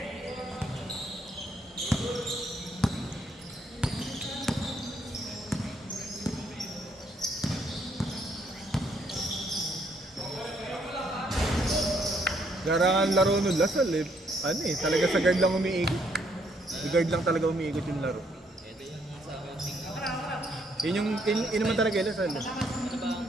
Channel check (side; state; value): both; normal; correlation 0.70